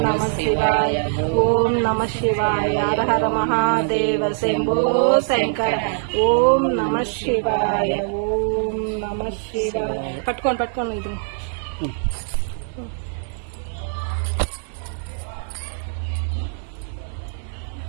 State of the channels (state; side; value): silent; left; 64 dB below the other